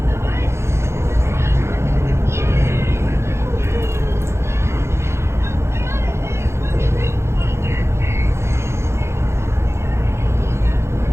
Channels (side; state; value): left; late; 0.13 ms